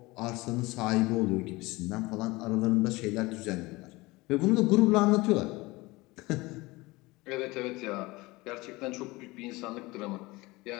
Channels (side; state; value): right; quieter; 21.9 dB